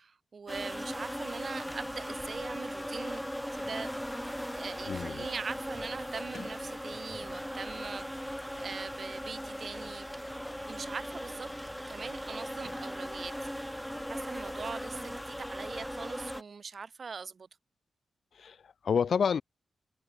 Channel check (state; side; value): normal; both; correlation 0.90